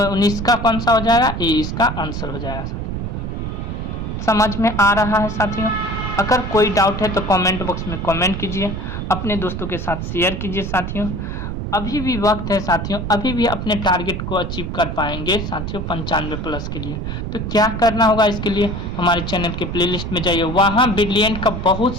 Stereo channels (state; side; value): noise; right; rumble, 4 dB below the sound